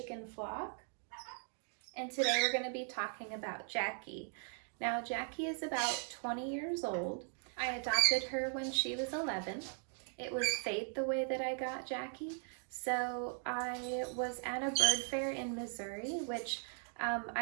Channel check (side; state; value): left; silent; 52 dB below the other